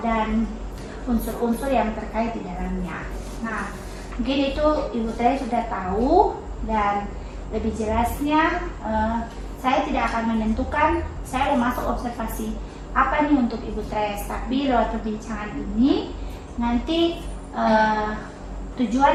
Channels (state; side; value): identical; both; correlation 1.00